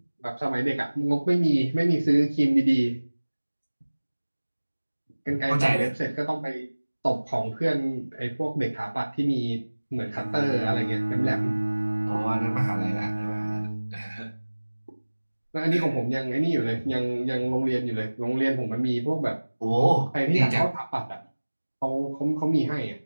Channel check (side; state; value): both; inverted; correlation -1.00